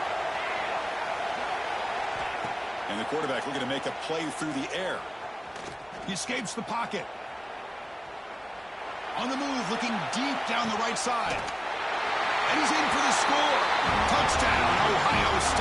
And the quarterback looking to make a play through the air. He escapes the pocket. On the move, looking deep down the right side. And he's in for the score. Touchdown, Ohio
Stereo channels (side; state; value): both; identical; correlation 1.00